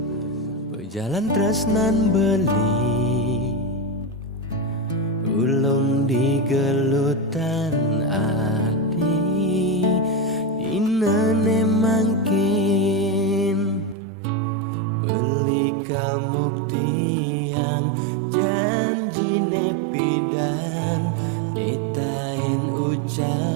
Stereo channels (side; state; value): left; drops out; at 14.0 s